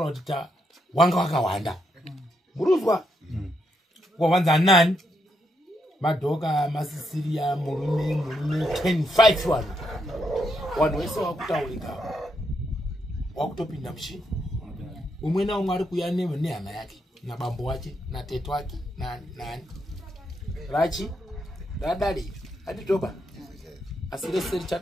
kuti wanga wakawanda. Muruzwa? Wawanza nani? Madoka, masisiria, murume 10-5 wanu. Wanu wese wakutaurika. Wakutopinda mshini. Umwe na umwe ari kuya nehama yake. Na bambo wake, na teto wake, na nani. Rachi, radari, aditoba. Asireseri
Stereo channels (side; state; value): both; normal; correlation 0.79